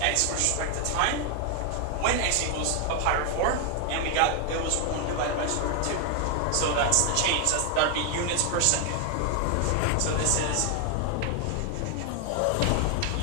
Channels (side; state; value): both; different; correlation 0.00